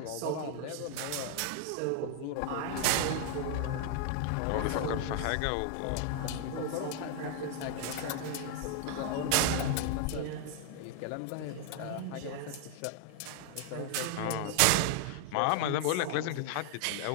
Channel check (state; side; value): different; both; correlation 0.00